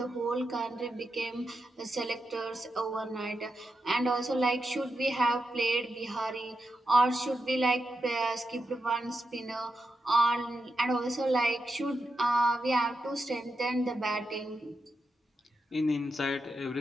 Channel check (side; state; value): both; normal; correlation 0.87